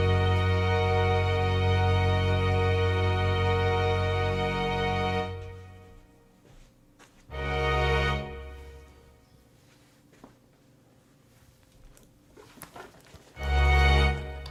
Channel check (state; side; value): identical; both; correlation 1.00